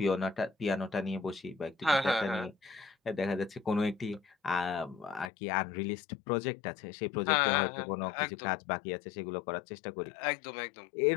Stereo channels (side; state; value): right; drops out; at 5.3 s